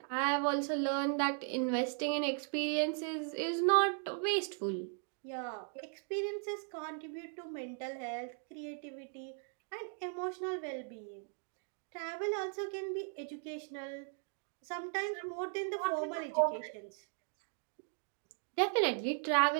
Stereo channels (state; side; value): silent; left; 53 dB below the other